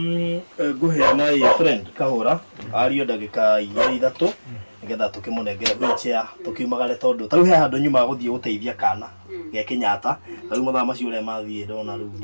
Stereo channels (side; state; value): both; inverted; correlation -1.00